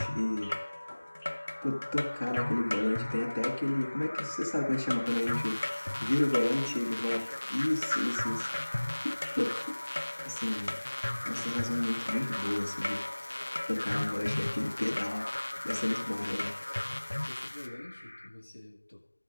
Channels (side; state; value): both; inverted; correlation -1.00